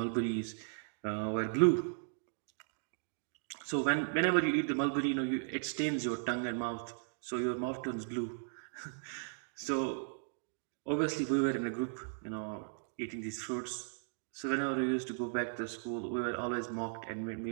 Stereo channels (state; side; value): silent; left; digital silence